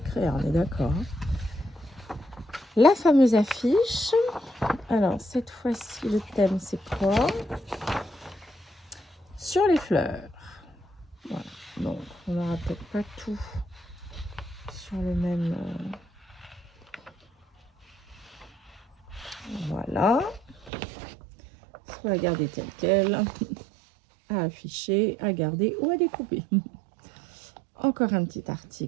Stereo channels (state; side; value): drops out; left; at 20.7 s